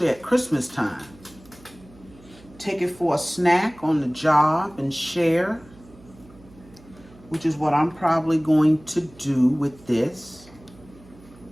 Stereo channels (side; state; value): right; noise; hum, 24 dB below the sound